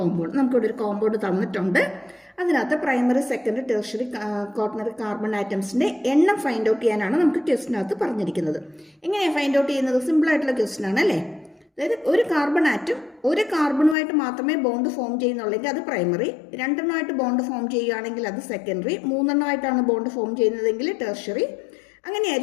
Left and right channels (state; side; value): drops out; right; at 14.0 s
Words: നമുക്കിവിടെ ഒരു കോമ്പൗണ്ട് തന്നിട്ടുണ്ട്. അതിനകത്ത് primary, secondary, tertiary, quaternary carbon ആറ്റംസിന്റെ എണ്ണം ഫൈൻഡ് ഔട്ട് ചെയ്യാനാണ് നമുക്ക് ക്വസ്റ്റിനകത്ത് പറഞ്ഞിരിക്കുന്നത്. എങ്ങനെയാണ് ഫൈൻഡ് ഔട്ട് ചെയ്യുന്നത്? സിമ്പിൾ ആയിട്ടുള്ള ക്വസ്റ്റ്യൻ ആണ് അല്ലേ? അതായത് ഒരു കാർബൺ ആറ്റം ഒരു കാർബണുമായിട്ട് മാത്രമേ ബോണ്ട് ഫോം ചെയ്യുന്നുള്ളെങ്കിൽ അത് പ്രൈമറി, രണ്ടെണ്ണമായിട്ട് ബോണ്ട് ഫോം ചെയ്യുകയാണെങ്കിൽ അത് സെക്കൻഡറി, മൂന്നെണ്ണമായിട്ടാണ് ബോണ്ട് ഫോം ചെയ്യുന്നതെങ്കിൽ ടെർഷ്യറി.